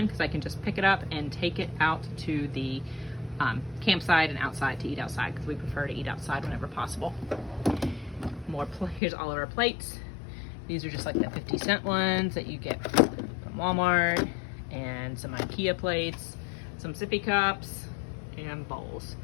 because I can just pick it up and take it out to the campsite and outside to eat outside because we prefer to eat outside whenever possible. Here's all of our plates. These are just like the 50-cent ones that you get from Walmart, and some IKEA plates, some sippy cups, and bowls.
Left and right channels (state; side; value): drops out; right; at 9.0 s